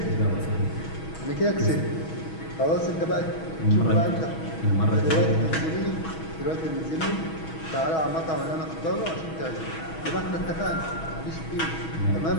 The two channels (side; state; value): right; late; 6.2 ms